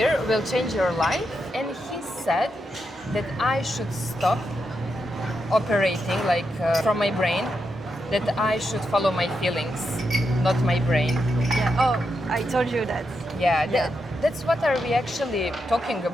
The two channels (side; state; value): both; normal; correlation 0.84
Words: will change your life. And he said that I should stop operating like from my brain, that I should follow my feelings, not my brain. Yeah. Oh, I told you that. Yeah, Yeah. that's what are we actually talking